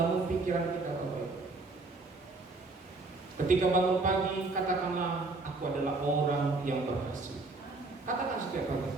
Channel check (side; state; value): left; quieter; 3.5 dB